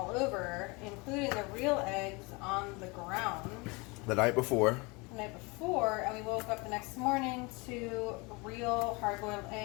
over, including the real eggs on the ground The night before. the night before, and we woke up the next morning to real hard-boiled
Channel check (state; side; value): quieter; right; 27.4 dB